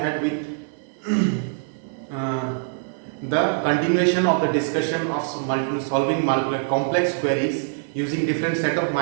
with uh, the continuation of the discussion of solving complex queries using different set of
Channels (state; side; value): silent; left; 61 dB below the other